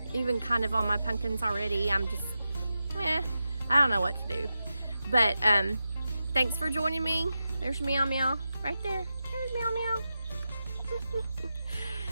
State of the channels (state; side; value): inverted; both; correlation -0.90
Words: even kind of on my pumpkins already. I'm just, I don't know what to do. But thanks for joining me. There's Meow Meow right there. There's Meow Meow.